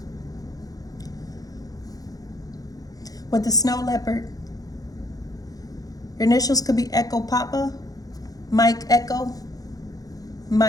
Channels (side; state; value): right; late; 0.18 ms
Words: With the snow leopard, your initials could be Echo Papa, Mike Echo,